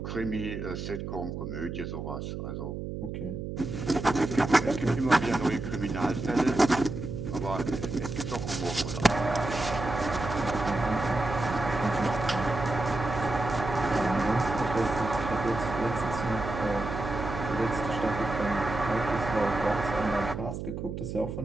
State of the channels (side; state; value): right; noise; hum, 6 dB below the sound